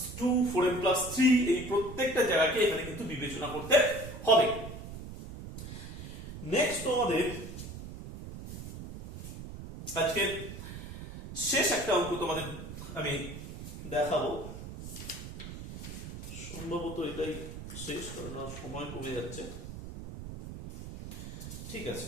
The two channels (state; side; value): noise; right; rumble, 10 dB below the sound